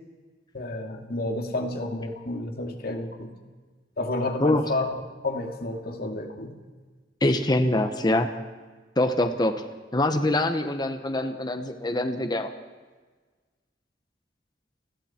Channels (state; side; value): normal; both; correlation 0.55